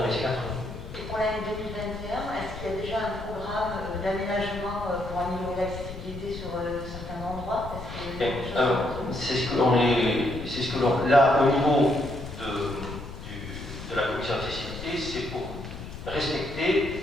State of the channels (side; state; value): left; noise; rumble, 11 dB below the sound